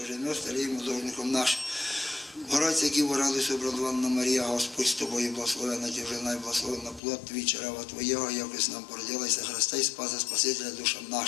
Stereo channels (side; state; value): right; drops out; at 7.0 s